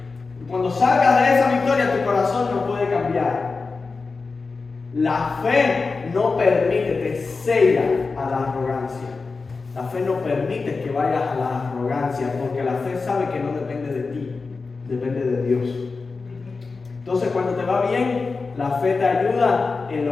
Y cuando salgas de esa victoria, tu corazón no puede cambiar. La fe no permite, te cega a la arrogancia. La fe no permite que vayas a la arrogancia, porque la fe sabe que no depende de ti, depende de Dios. Entonces, cuando te va bien, la fe te ayuda en la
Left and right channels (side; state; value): right; quieter; 4.3 dB